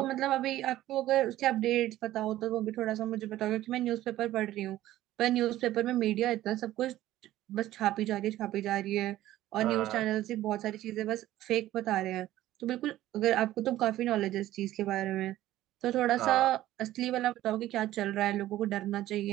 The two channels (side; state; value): left; quieter; 14.5 dB